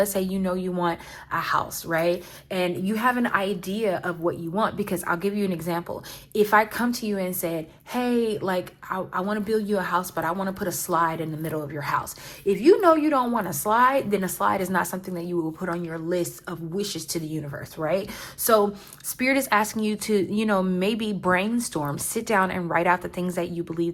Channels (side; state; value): both; identical; correlation 1.00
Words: say you know you want a house, right? And you have an idea of what you want, because I'll give you an example. If I come to you and said, hey, like I want to build you a house, but I want to put a slide in the middle of your house. If you know you don't want a slide, then a slide is not something that you will put on your list of wishes to the universe, right? So spirit is asking you to, maybe brainstorm, sit down and write out the things that you believe